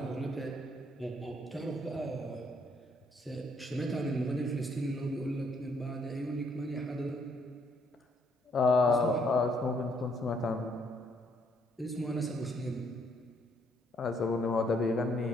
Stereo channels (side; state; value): both; normal; correlation 0.70